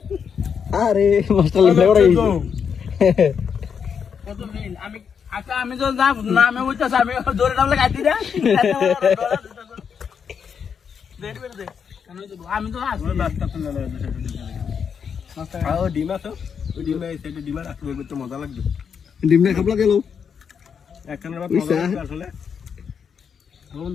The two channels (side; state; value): right; quieter; 6.9 dB